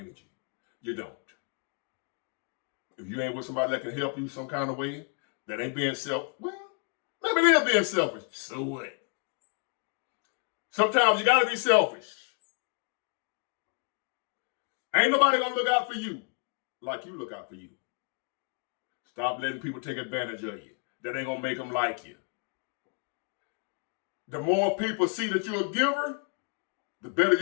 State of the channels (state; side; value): quieter; right; 37.8 dB